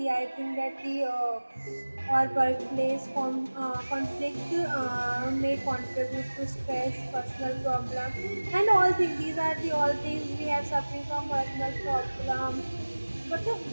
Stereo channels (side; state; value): both; inverted; correlation -1.00